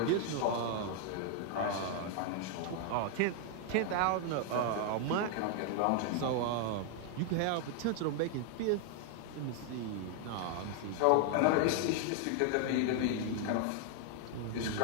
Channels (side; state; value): both; different; correlation 0.00